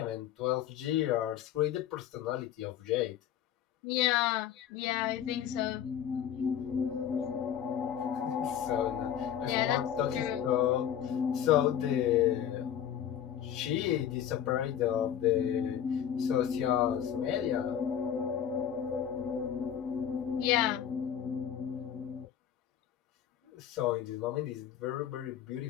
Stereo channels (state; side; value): quieter; right; 9.7 dB